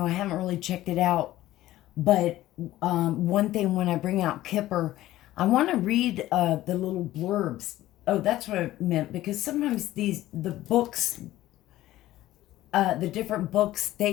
I haven't really checked it out, but one thing when I bring out Kipper, I want to read the little blurbs. Oh, that's what I meant, because sometimes the books, the different books,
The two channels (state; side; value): quieter; right; 15.2 dB